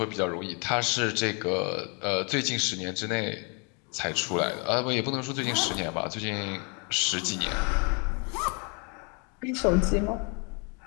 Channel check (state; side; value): quieter; right; 35.1 dB